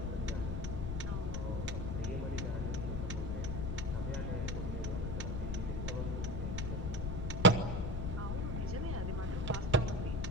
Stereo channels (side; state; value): left; noise; rumble, 1 dB below the sound